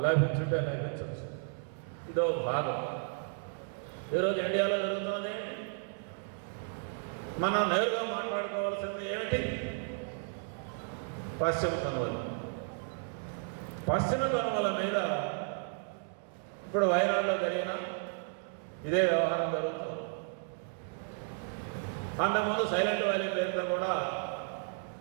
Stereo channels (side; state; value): left; silent; 55 dB below the other